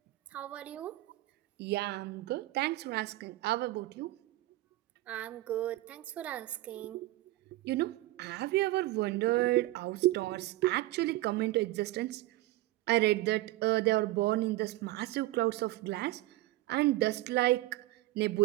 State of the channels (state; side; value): quieter; left; 17.5 dB